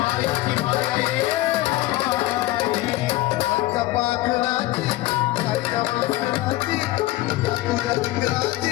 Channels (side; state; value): right; quieter; 17.1 dB